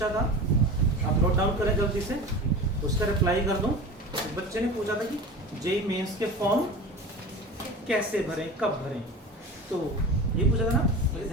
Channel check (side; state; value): both; normal; correlation 0.32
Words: था, आप नोट डाउन करें जल्दी से, उसका रिप्लाई कर दूं। एक बच्चे ने पूछा था कि जेईई मेंस के फॉर्म कैसे भरें, कब भरें, तो ये पूछा था ना। मुझे